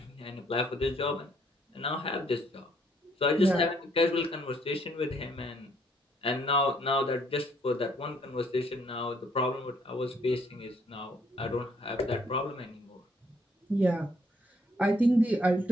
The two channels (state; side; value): normal; both; correlation 0.67